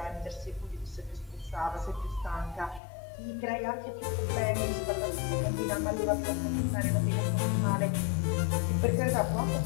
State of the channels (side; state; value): right; drops out; at 2.8 s